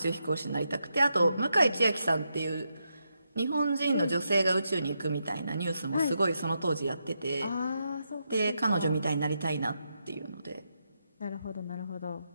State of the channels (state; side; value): inverted; both; correlation -0.84